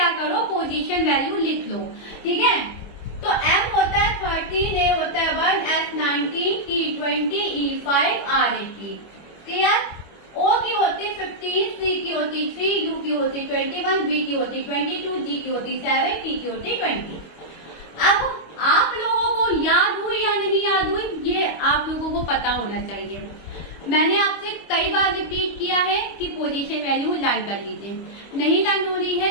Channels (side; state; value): right; late; 25 ms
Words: करो, पोजीशन वैल्यू लिख लो। ठीक है, तो M होता है 13, A होता है 1, S 19, T 20, E 5, R 80। Clear? O की होती 15, C की होती 3, U की होती 21, B की होती 22, G की होती 7, T की होती 20। अब आप लोगों को याद हुई या नहीं याद हुई, ये आप लोगों को पता होना चाहिए। मैंने आपसे कई बार रिपीट किया है कि पोजीशन वैल्यू लर्न कर लीजिए। नहीं लर्न हो रही है